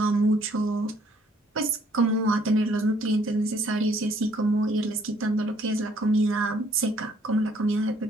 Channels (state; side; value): normal; both; correlation 0.63